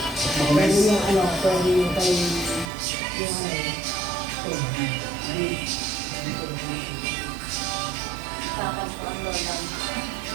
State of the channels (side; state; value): left; drops out; at 2.7 s